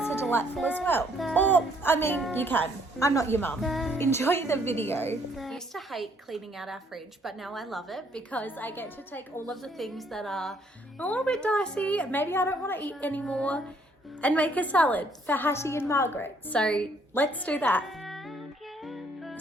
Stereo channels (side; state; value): both; normal; correlation 0.66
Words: are delightful as well. Or, I mean, you can. I'm not your mum. Enjoy the video. I used to hate cleaning out our fridge, but now I love it because I get to take all of the things that are a little bit dicey, maybe I don't want to eat anymore, and make a salad for Hattie and Margaret. So let's do that.